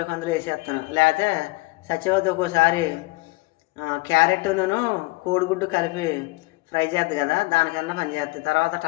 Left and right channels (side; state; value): right; quieter; 23.0 dB